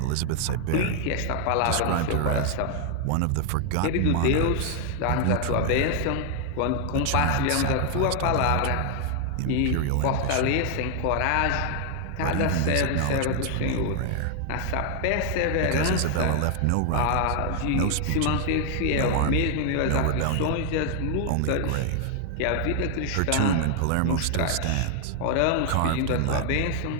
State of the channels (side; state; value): both; different; correlation 0.00